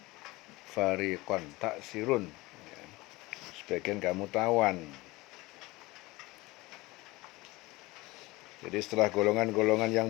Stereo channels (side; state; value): right; quieter; 21.4 dB